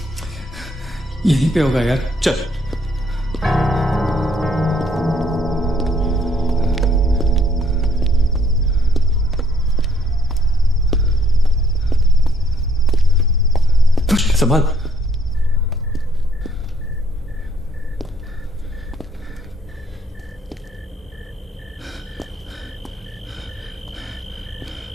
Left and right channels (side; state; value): both; normal; correlation 0.66